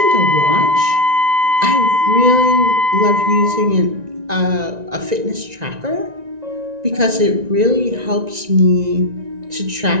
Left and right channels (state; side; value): late; left; 1.9 ms